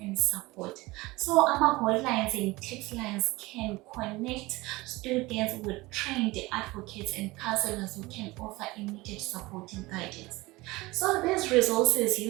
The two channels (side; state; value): left; quieter; 21.1 dB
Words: and support. So hotlines and text lines can connect students with trained advocates and counselors who can offer immediate support and guidance. So these resources,